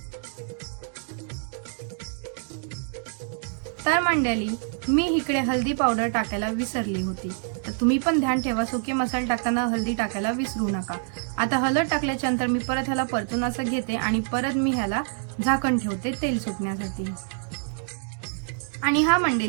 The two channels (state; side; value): silent; left; 61 dB below the other